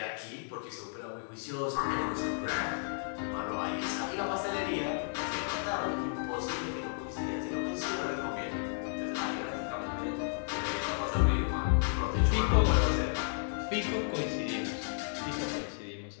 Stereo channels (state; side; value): silent; right; digital silence